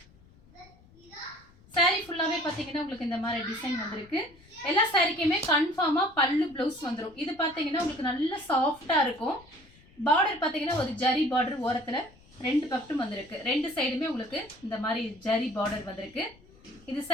சாரீ ஃபுல்லாவே பார்த்தீங்கன்னா உங்களுக்கு இந்த மாதிரி டிசைன் வந்திருக்கு. எல்லா சாரீக்குமே கன்ஃபார்மா பல்லு பிளவுஸ் வந்துடும். இது பார்த்தீங்கன்னா உங்களுக்கு நல்ல சாஃப்டா இருக்கும். பார்டர் பார்த்தீங்கன்னா ஒரு ஜரி பார்டர் ஓரத்தில் ரெண்டு பக்கட்டும் வந்திருக்கு. ரெண்டு சைடுமே உங்களுக்கு இந்த மாதிரி ஜரி பார்டர் வந்திருக்கு. இது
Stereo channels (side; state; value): left; noise; rumble, 27 dB below the sound